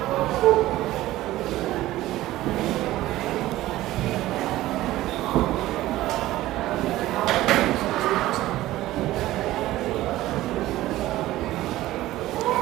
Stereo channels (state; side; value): quieter; left; 16.0 dB